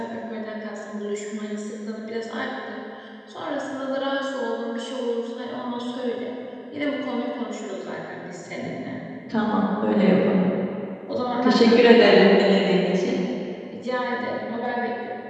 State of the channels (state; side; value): identical; both; correlation 1.00